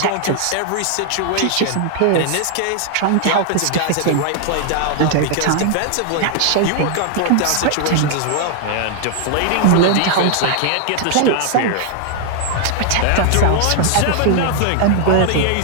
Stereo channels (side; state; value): both; different; correlation 0.00